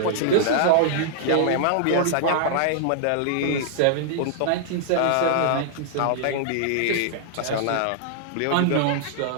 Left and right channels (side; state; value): both; different; correlation -0.01